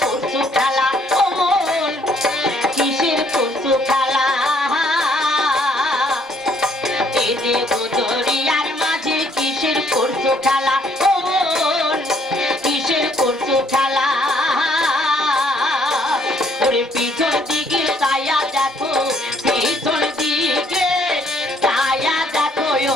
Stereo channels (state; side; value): normal; both; correlation 0.66